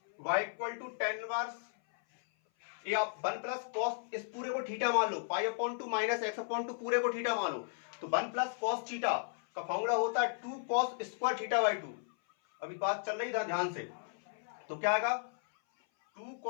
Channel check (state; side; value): silent; right; 54 dB below the other